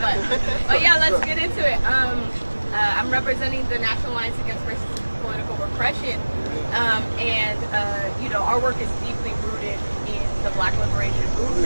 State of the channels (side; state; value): both; inverted; correlation -1.00